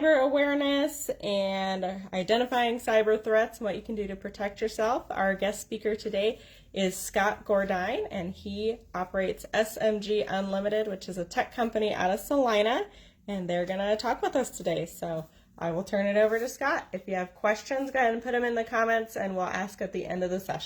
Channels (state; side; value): identical; both; correlation 1.00